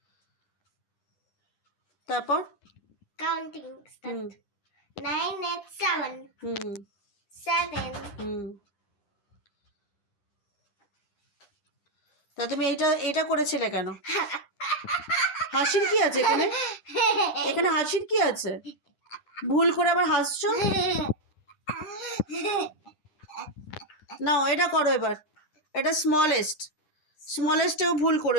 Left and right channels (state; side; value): late; right; 9.8 ms